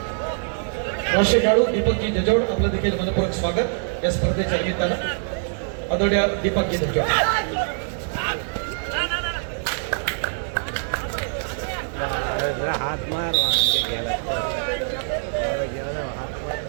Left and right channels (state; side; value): silent; left; 63 dB below the other